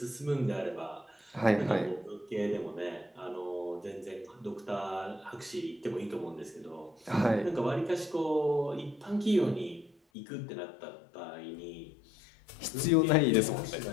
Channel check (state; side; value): drops out; right; at 10.0 s